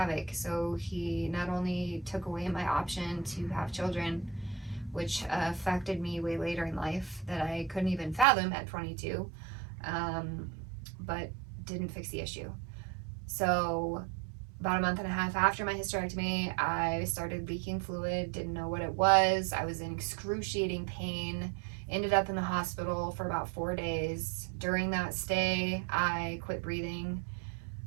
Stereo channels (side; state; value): left; drops out; at 8.2 s